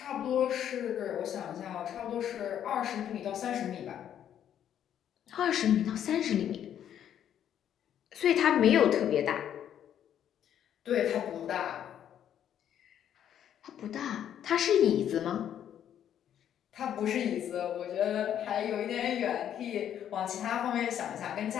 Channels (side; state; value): right; quieter; 10.0 dB